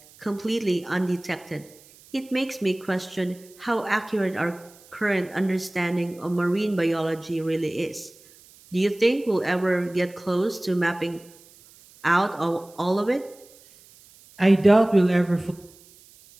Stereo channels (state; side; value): noise; right; hiss, 25 dB below the sound